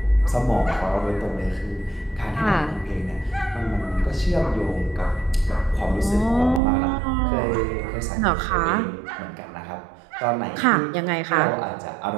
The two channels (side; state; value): left; drops out; at 6.6 s